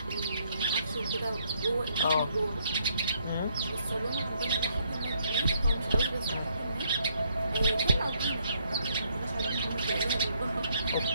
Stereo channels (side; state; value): both; inverted; correlation -0.72